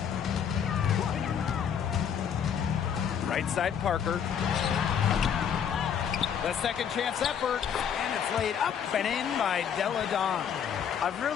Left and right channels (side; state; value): right; quieter; 8.1 dB